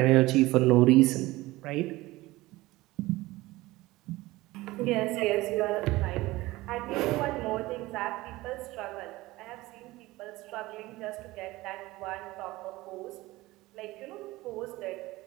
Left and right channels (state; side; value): quieter; left; 19.2 dB